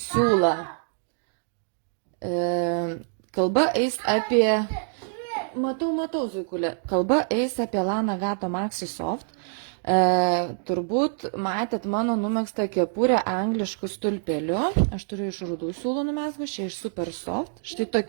Kalba eis apie, matau, Zuikulė, kalba eis apie Lana Gato Maxi Soft. Turbūt matėt mano numegztą kepurę angliškų stulpeliu. Aš turiu iš rudų siūlų numezgus, čia iš Super Soft. Štai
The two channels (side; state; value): left; silent; digital silence